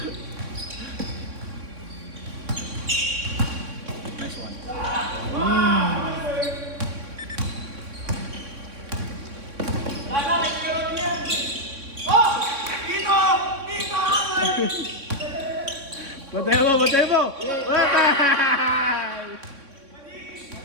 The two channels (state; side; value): late; left; 3.6 ms